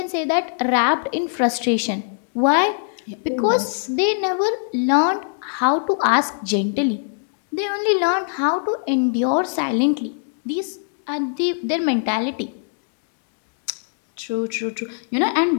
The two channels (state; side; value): silent; right; digital silence